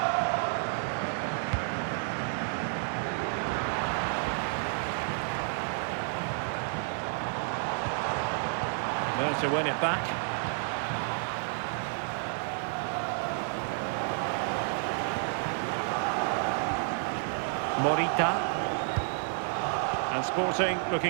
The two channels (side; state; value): left; silent; 57 dB below the other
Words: There to win it back. Morita. And Sporting